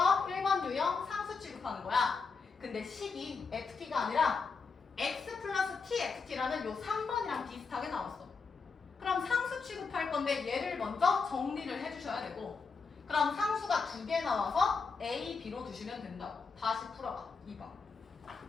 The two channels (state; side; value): quieter; right; 4.9 dB